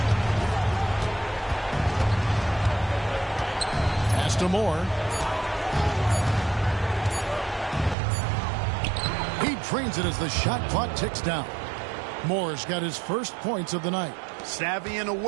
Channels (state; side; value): drops out; left; at 8.0 s